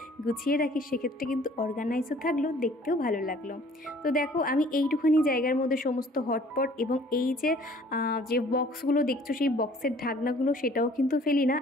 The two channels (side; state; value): both; normal; correlation 0.54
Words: গুছিয়ে রাখি, সেক্ষেত্রে কিন্তু অর্গানাইজও থাকলো, দেখতে দেখতেও ভালো লাগলো। তো দেখো আমি এইটুখানি জায়গার মধ্যে সমস্ত হটপট এবং এই যে বক্সগুলো দেখছো সেই বক্সের ঢাকনাগুলো সেটাও কিন্তু ফেলি না।